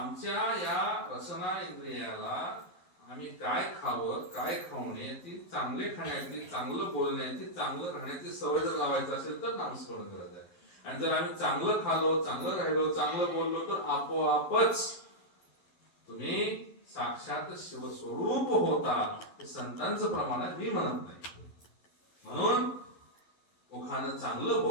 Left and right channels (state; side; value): late; right; 11 ms